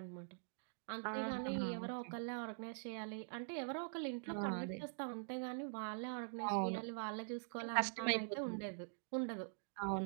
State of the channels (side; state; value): left; silent; digital silence